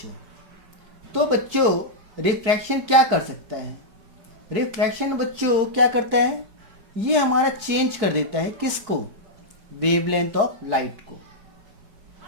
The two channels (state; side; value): late; left; 4.7 ms